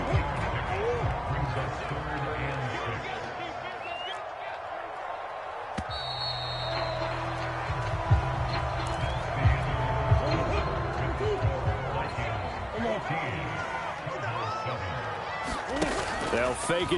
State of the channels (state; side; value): identical; both; correlation 1.00